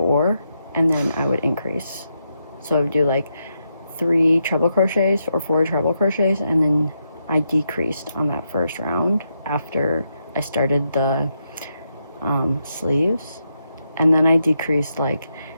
and then I would increase. So I would do like 3 treble crochets or 4 treble crochets, and then I decreased on that first round after I started the sleeves, and then I decreased like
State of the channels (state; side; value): inverted; both; correlation -0.82